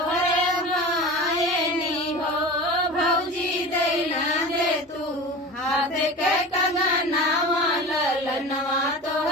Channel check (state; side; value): normal; both; correlation 0.33